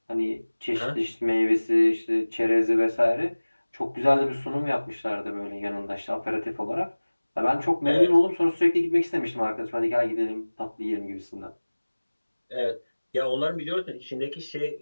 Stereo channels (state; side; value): inverted; both; correlation -1.00